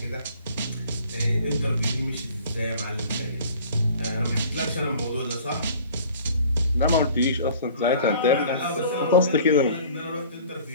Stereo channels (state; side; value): inverted; both; correlation -0.49